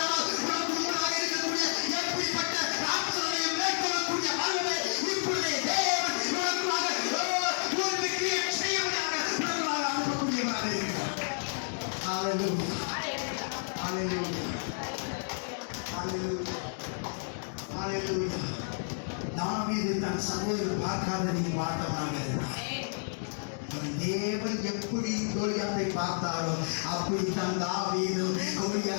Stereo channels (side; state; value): right; silent; digital silence